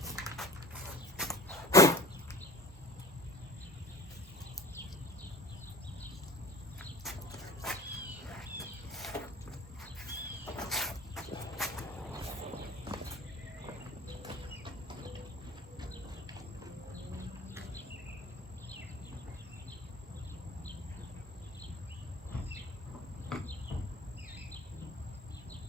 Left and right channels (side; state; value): both; normal; correlation 0.42